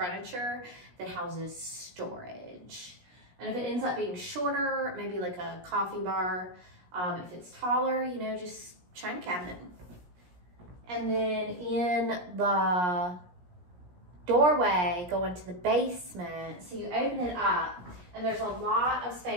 that houses storage. And if it ends up being shorter, maybe like a coffee bar. If it's taller, you know, just china cabinet. And then in the doorway going to the basement, so you open it up and there's a lot of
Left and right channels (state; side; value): late; left; 17 ms